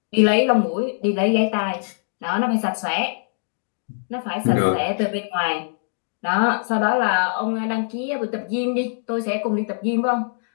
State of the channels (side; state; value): right; silent; digital silence